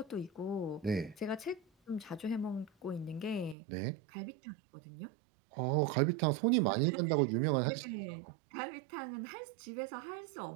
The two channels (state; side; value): drops out; left; at 3.6 s